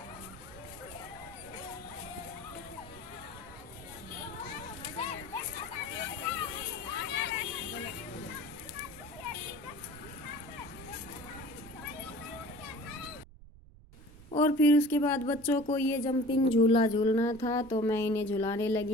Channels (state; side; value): noise; right; rumble, 21 dB below the sound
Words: और फिर उसके बाद बच्चों को ये जंपिंग झूला झूलना था, तो मैं इन्हें झुलाने